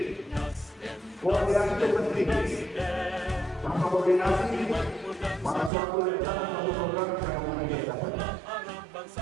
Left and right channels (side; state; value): left; drops out; at 5.7 s